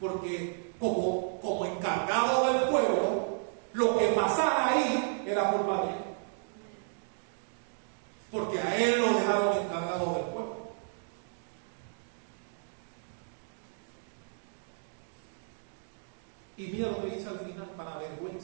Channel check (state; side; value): silent; left; digital silence